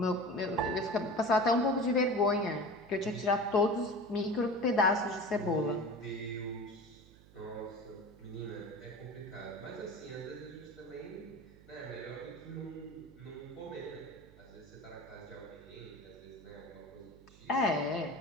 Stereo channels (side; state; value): right; noise; hum, 22 dB below the sound